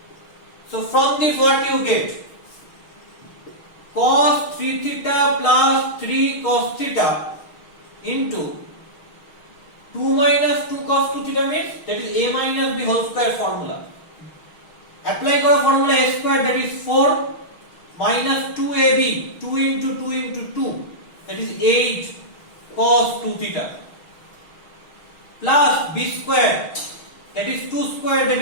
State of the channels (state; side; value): late; right; 6.4 ms